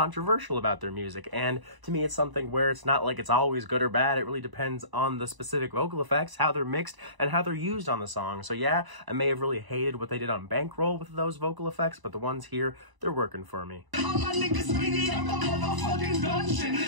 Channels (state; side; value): late; left; 1.0 ms